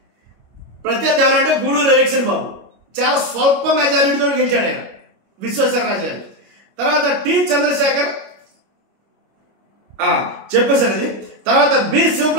ప్రత్యర్థి ఎవరంటే గూడూరు ఎలక్షన్ బాబు, చాలా స్వల్ప మెజారిటీతో గెలిచాడు ఆయన విశ్వేశ్వరరాజు గారు. తర్వాత టి చంద్రశేఖర్ చెప్పేశారు అది. తర్వాత బి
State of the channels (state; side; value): late; left; 25 ms